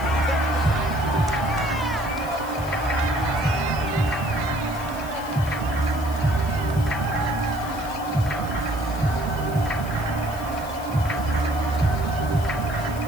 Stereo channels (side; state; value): left; noise; hiss, 17 dB below the sound